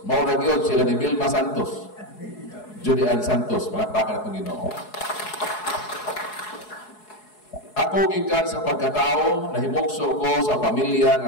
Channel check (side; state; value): right; late; 4.7 ms